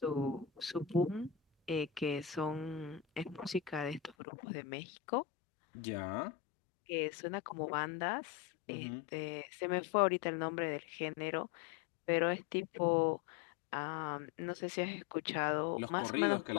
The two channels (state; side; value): drops out; right; at 4.2 s